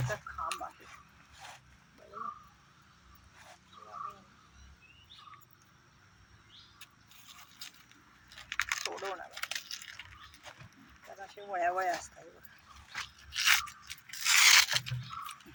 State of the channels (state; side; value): identical; both; correlation 1.00